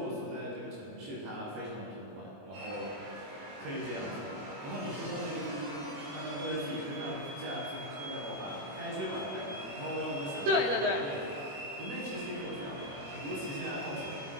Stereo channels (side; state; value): left; late; 21 ms